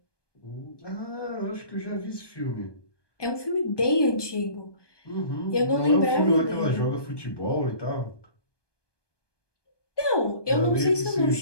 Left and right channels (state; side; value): late; right; 1.2 ms